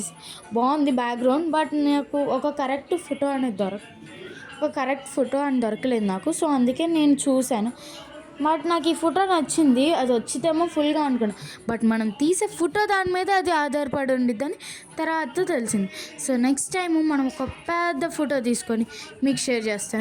బాగుంది బ్యాక్గ్రౌండ్, బట్ నాకు ఒక కరెక్ట్ ఫోటో అని దొరకలేదు నాకు. సో అందుకే నేను చూశాను, బట్ నాకు ఈ ఫోటో నచ్చింది. అది వచ్చితేమో ఫుల్గా అనుకున్నా, బట్ మనం తీసే ఫోటో దాని మీద అది ఆధారపడి ఉండిద్దని తర్వాత తెలిసింది. సో నెక్స్ట్ టైం మనం ఒక పెద్ద ఫోటో తీసుకొని మీకు షేర్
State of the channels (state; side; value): identical; both; correlation 1.00